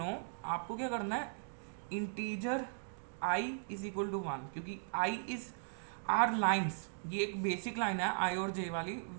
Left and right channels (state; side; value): silent; left; digital silence